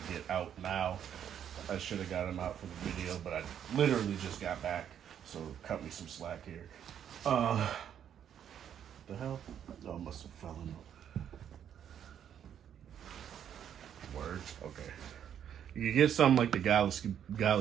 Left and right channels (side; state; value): left; quieter; 9.3 dB